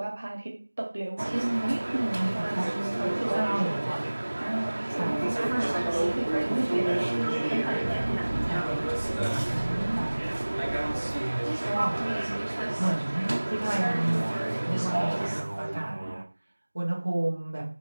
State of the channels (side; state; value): both; inverted; correlation -1.00